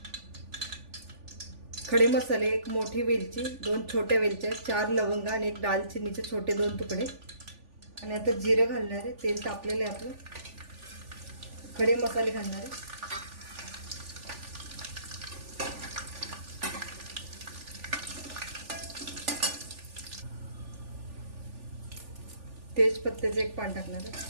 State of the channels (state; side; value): late; left; 3.4 ms